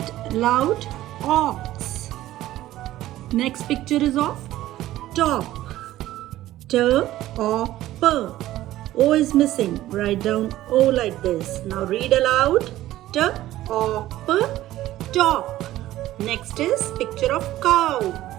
loud. Ox. Next picture is of top. T or P. O is missing. Write down O like this. Now read aloud. T or P. Top. Next is picture of cow.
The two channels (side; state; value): left; quieter; 14.8 dB